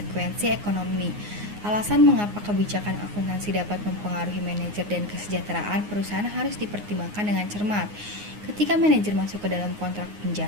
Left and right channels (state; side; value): late; left; 9.6 ms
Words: ekonomi. Alasan mengapa kebijakan akuntansi dapat mempengaruhi manajer dan kesejahteraan perusahaan harus dipertimbangkan dengan cermat. Ketika manajer masuk ke dalam kontrak